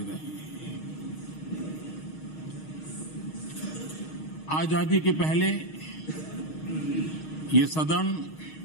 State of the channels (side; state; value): right; late; 6.4 ms